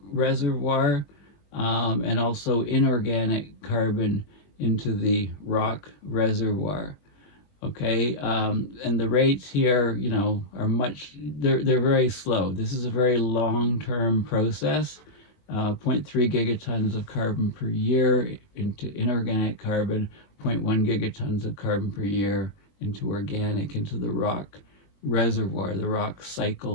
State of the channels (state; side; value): late; right; 21 ms